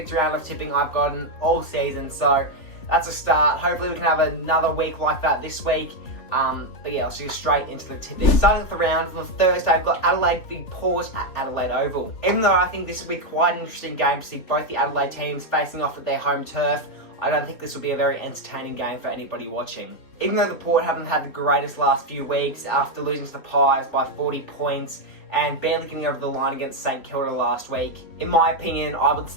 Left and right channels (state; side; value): late; right; 3.4 ms